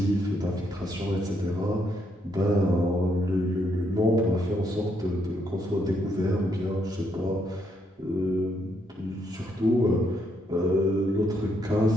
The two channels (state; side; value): normal; both; correlation 0.75